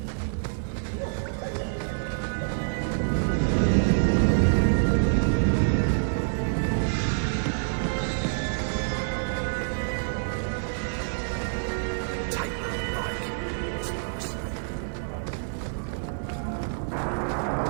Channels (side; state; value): left; silent; 60 dB below the other